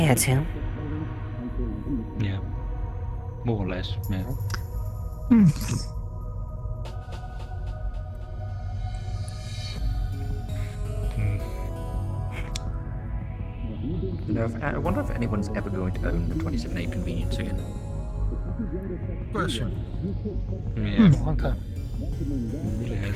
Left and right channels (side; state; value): both; identical; correlation 1.00